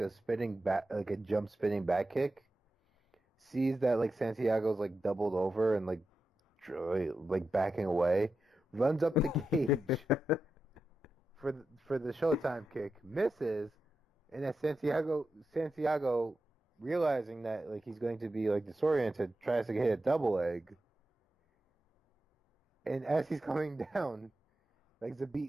jump spinning back kick. Sees that like Santiago's like doubled over and like backing away, runs up the cage for the Showtime kick, misses, and then Santiago realizing that like he's going to be like disoriented, tries to hit a double leg, and as he's coming down, like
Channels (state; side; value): normal; both; correlation 0.89